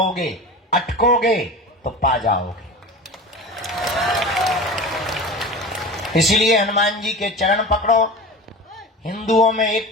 अटकोगे तो पा जाओगे। इसलिए हनुमान जी के चरण पकड़ो, हिंदुओं में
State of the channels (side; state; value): both; normal; correlation 0.32